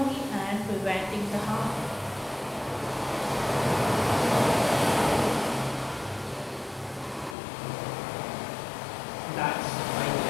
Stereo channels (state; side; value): drops out; right; at 7.4 s